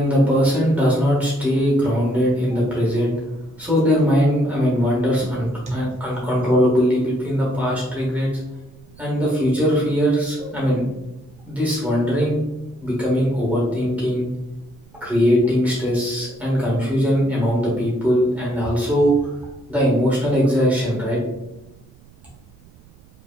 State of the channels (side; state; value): right; noise; rumble, 26 dB below the sound